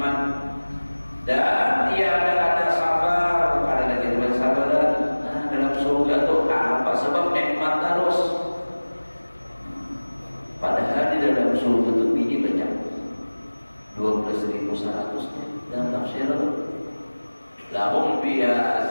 dan tiada ada sabar ada lagi sabaran. Nah, dalam surga tuh apa sebab nikmat terus padahal di dalam surga tuh bini banyak 12.100 dalam tafsir lahum biha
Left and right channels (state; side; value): inverted; both; correlation -1.00